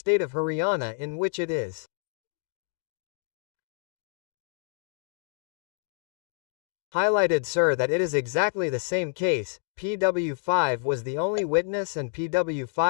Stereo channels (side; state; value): right; silent; digital silence